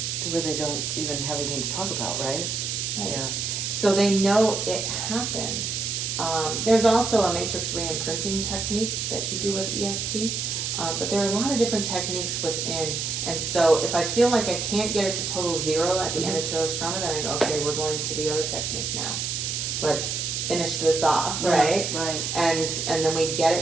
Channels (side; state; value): right; noise; hiss, 2 dB below the sound